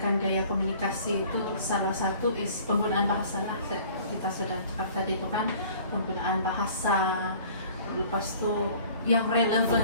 gaya komunikasi itu salah satu is penggunaan bahasa lah. Kita sudah cakap tadi itu kan, penggunaan bahasa, lepas itu yang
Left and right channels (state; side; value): inverted; both; correlation -0.50